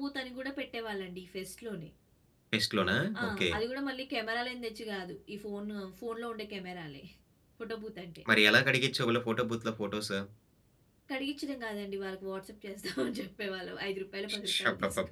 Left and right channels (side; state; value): both; identical; correlation 1.00